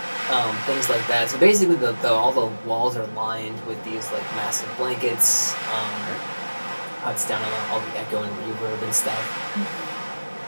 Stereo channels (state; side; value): inverted; both; correlation -1.00